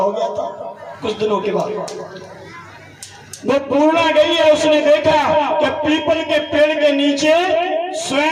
गया था कुछ दिनों के बाद। वो पूर्णा गई है, उसने देखा कि पीपल के पेड़ के नीचे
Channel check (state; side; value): identical; both; correlation 1.00